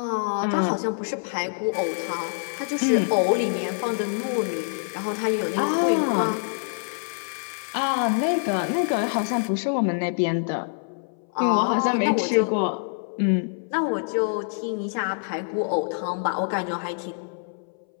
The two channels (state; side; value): silent; right; 61 dB below the other